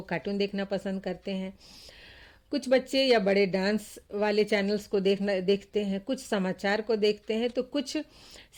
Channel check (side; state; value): both; identical; correlation 1.00